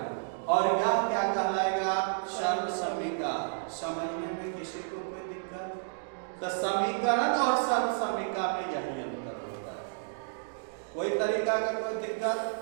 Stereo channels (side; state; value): left; silent; digital silence